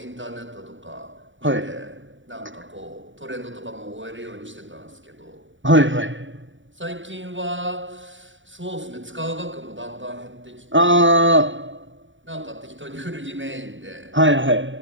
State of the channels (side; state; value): left; late; 0.55 ms